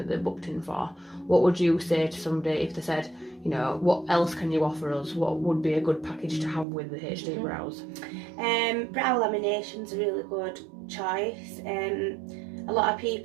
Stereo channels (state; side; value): drops out; left; at 6.7 s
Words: that they're booked in for? What would you say to somebody if they said, you know, what else can you offer us? What would be a good package to have with the HD brows? Brow lamination's a really good choice. A lot of